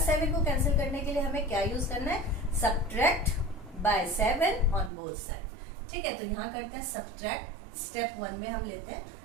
को कैंसिल करने के लिए हमें क्या यूज करना है, subtract by 7 on both side. ठीक है, तो यहाँ करते हैं सब्ट्रैक्ट। स्टेप 1 में हम लेते हैं,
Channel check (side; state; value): left; drops out; at 4.9 s